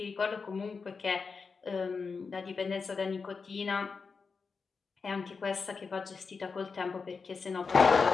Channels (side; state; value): right; quieter; 5.0 dB